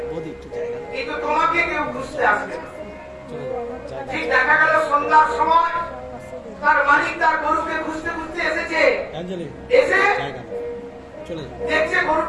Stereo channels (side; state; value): both; identical; correlation 1.00